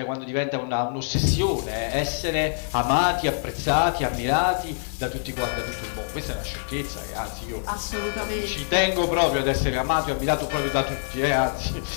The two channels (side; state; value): right; silent; digital silence